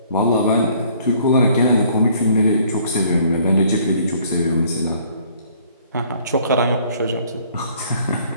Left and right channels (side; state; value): both; inverted; correlation -0.59